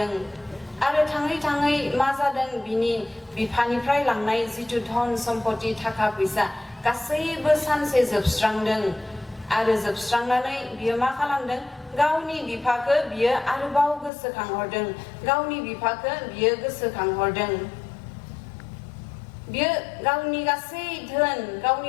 आरो थाङै थाङै मा जादों बिनि बिफानिफ्राय लांनाय जितु धन सम्पति थाखा फैसा गासैबो सानसे जोबस्रांदों आरो जोबस्रांनानै बियो मा खालामदों गावनि बिफाखौ बियो आरोबाव गोसोखांहरदों गावनि बिफाखौ बियो गोसोखांहरदों बियो गावनि गासै धोन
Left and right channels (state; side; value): drops out; right; at 14.1 s